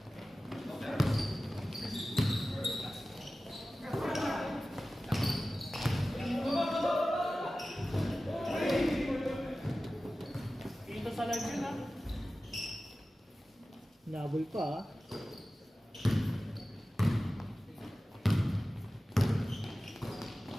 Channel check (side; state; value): both; normal; correlation 0.95